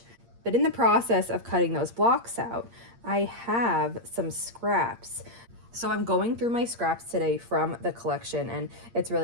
But in the process of cutting those blocks out, I have some scraps. So I'm going through my scraps today from the collection, and it's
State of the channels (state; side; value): late; left; 8.6 ms